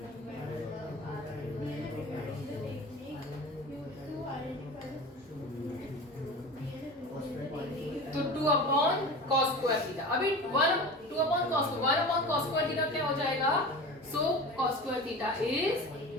तो 2/cos स्क्वायर थीटा, अभी 2/cos स्क्वायर थीटा क्या हो जाएगा, so cos square theta is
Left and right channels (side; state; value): both; normal; correlation 0.33